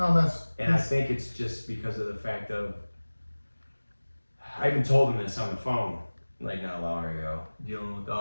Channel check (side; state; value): both; inverted; correlation -1.00